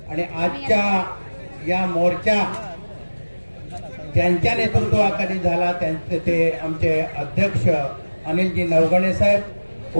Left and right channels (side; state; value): both; inverted; correlation -1.00